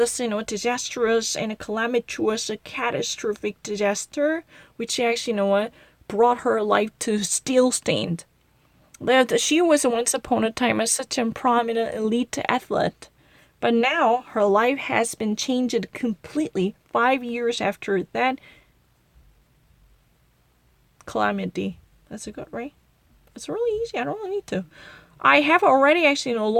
disastrous and calamitous, catastrophic disaster, which actually, brought her life to still-stand. That she was once upon a time such a prominent elite athlete, but now her life has been changed completely 5 years after that calamity. That's a good, right? It's really easy. I don't really need to. I have already actually,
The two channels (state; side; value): identical; both; correlation 1.00